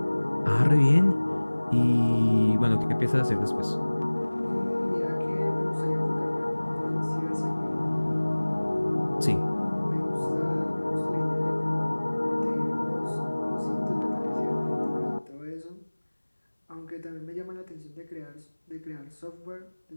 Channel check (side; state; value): both; inverted; correlation -1.00